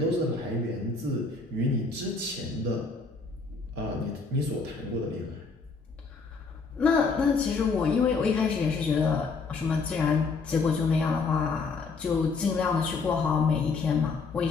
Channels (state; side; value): quieter; right; 4.4 dB